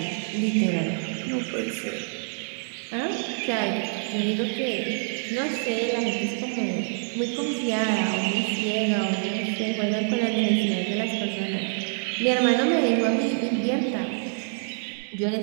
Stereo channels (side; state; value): left; silent; 61 dB below the other